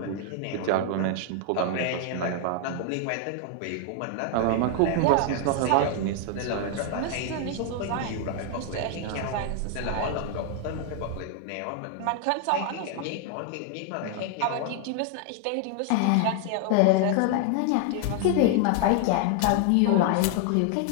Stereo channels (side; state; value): both; different; correlation 0.00